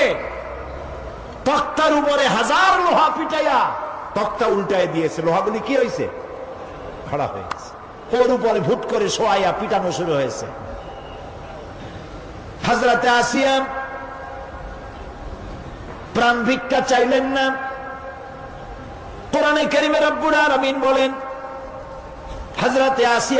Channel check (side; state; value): both; identical; correlation 1.00